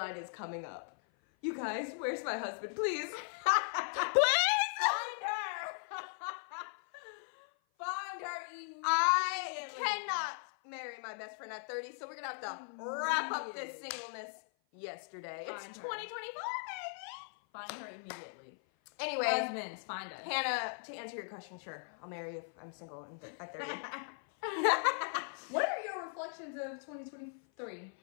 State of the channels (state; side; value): silent; right; 52 dB below the other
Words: is coming up. You guys, where's my husband? Please. Please! Find her! Find her immediately. I cannot marry my best friend at 30, so we're gonna have to wrap up this singleness yesterday. It's Find her. 2024, baby. Find her immediately. Anyway, Husbands, find us. Hannah, to answer your question, sure, I'll marry you if I'm single at 30. What are your reflections of 2023